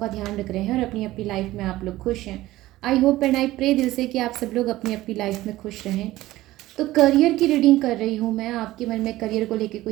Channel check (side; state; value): left; quieter; 16.6 dB